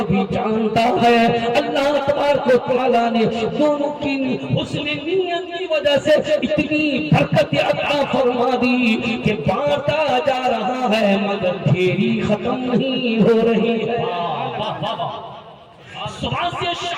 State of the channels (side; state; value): both; identical; correlation 1.00